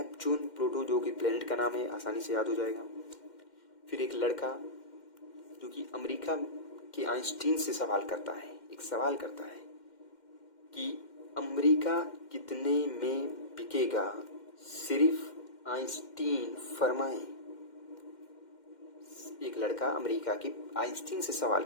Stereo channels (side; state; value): right; late; 2.1 ms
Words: प्लूटो जो कि प्लेनेट का नाम है, आसानी से याद हो जाएगा। फिर एक लड़का जो कि अमेरिका के आइंस्टीन से सवाल करता है, एक सवाल करता है कि अमेरिका कितने में बिकेगा, सिर्फ आइंस्टीन फरमाएं। एक लड़का अमेरिका के आइंस्टीन से सवाल